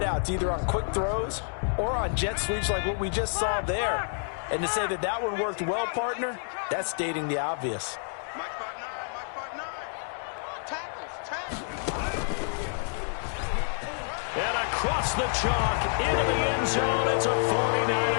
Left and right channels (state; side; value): silent; right; 59 dB below the other